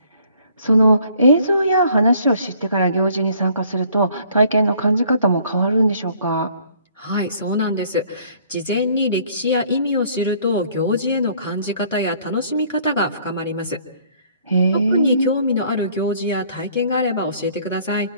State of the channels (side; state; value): both; inverted; correlation -0.59